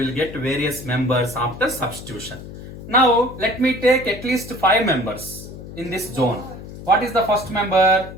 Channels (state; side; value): noise; left; hum, 13 dB below the sound